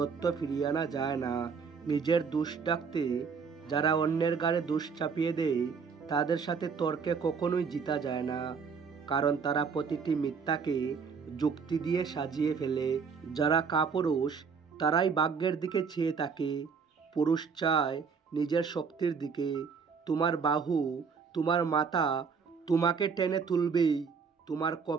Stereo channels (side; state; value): left; quieter; 5.8 dB